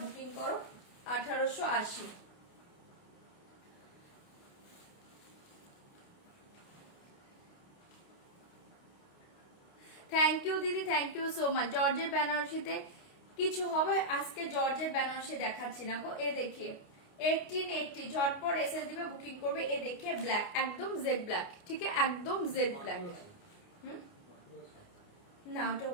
বুকিং করো। 1880, থ্যাংক ইউ দিদি, থ্যাংক ইউ সো মাচ। জর্জের বেনারসিতে কিছু হবে আজকে, জর্জের বেনারসি দেখাচ্ছি না গো। এ দেখিয়ে 1880, ঝটপট এসএস দিবে, বুকিং করবে। এ দেখিয়ে ব্ল্যাক, একদম জেড ব্ল্যাক, ঠিক আছে? একদম জেড ব্ল্যাক। না, ওটা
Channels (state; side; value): late; right; 29 ms